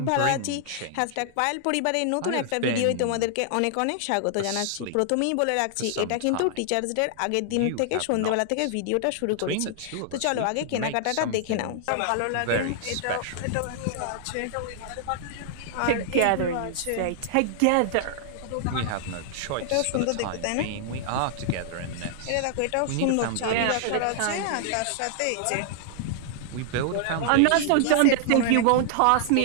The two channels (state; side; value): different; both; correlation -0.01